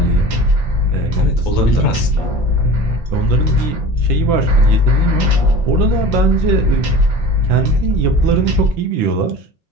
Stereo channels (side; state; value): both; normal; correlation 0.38